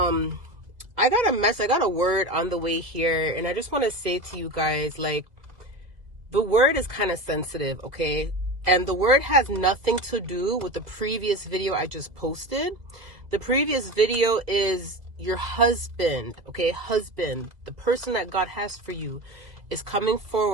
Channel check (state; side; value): late; left; 2.0 ms